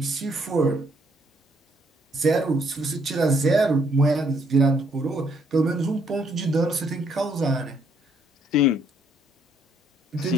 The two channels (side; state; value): both; normal; correlation 0.69